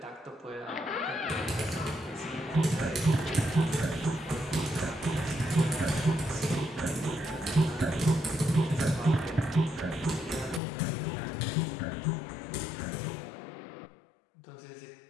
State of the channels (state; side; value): drops out; right; at 10.6 s